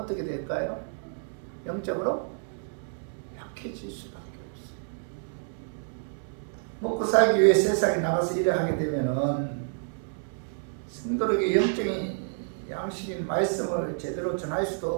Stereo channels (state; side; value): silent; left; digital silence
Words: 될까요? 영적으로 약해질 수밖에 없어요. 먹고 살기 위해 세상에 나가서 일을 하게 되면은 성도에게 영적인 양식인 말씀을 제대로 전할 수도